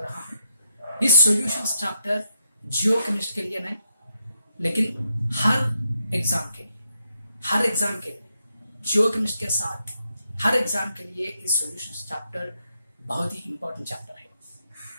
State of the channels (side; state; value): both; inverted; correlation -0.81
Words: रहा हूं। इस सॉल्यूशंस चैप्टर जियो केमिस्ट के लिए नहीं, लेकिन हर एग्जाम के लिए जियो केमिस्ट के साथ हर एग्जाम के लिए इस सॉल्यूशंस चैप्टर बहुत ही इंपॉर्टेंट चैप्टर है।